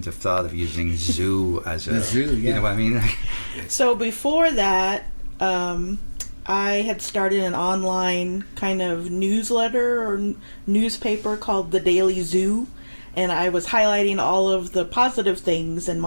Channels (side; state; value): both; inverted; correlation -1.00